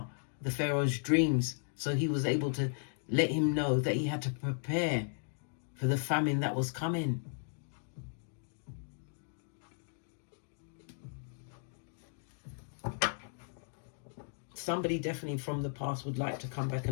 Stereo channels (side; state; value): right; silent; digital silence